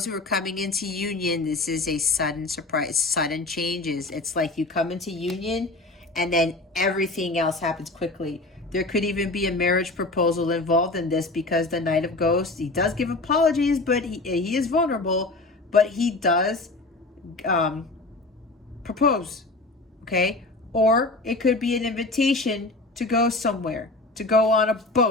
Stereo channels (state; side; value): quieter; right; 3.0 dB